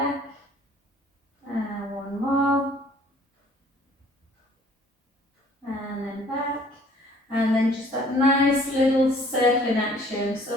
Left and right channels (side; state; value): both; normal; correlation 0.56